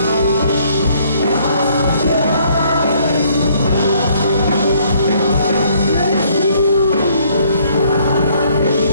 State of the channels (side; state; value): both; inverted; correlation -0.64